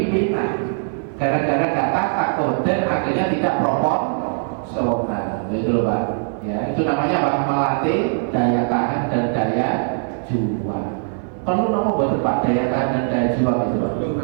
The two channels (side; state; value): left; silent; 56 dB below the other